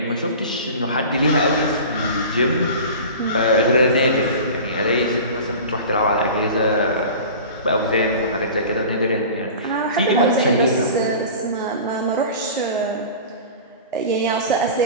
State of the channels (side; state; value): both; inverted; correlation -0.37